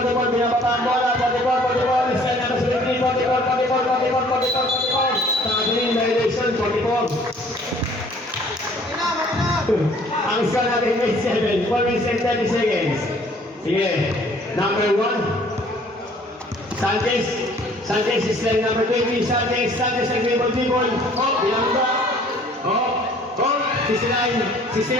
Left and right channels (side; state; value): both; normal; correlation 0.55